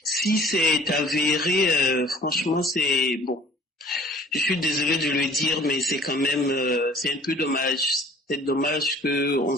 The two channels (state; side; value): normal; both; correlation 0.51